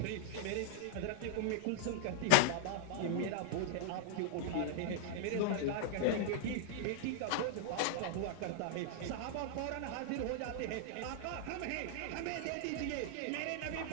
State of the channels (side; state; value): both; different; correlation -0.01